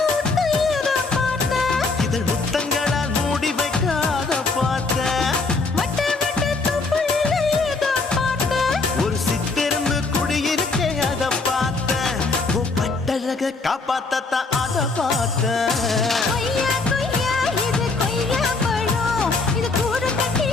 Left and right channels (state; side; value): quieter; right; 3.8 dB